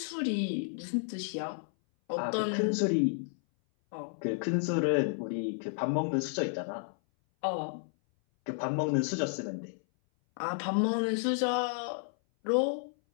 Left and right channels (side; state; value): right; silent; 57 dB below the other